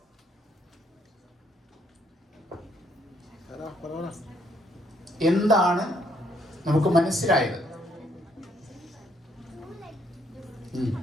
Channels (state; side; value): normal; both; correlation 0.70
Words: എന്താണ് നമുക്ക് മനസ്സിലായത്?